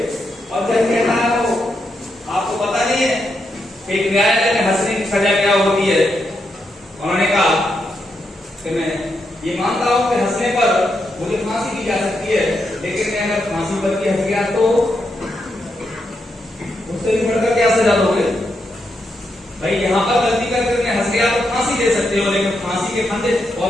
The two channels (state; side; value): normal; both; correlation 0.82